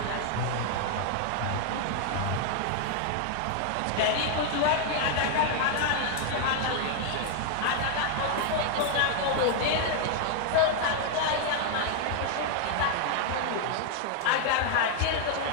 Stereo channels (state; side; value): different; both; correlation 0.00